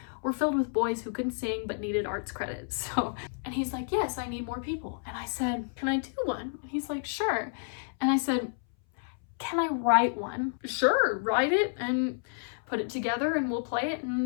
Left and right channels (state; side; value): silent; right; 58 dB below the other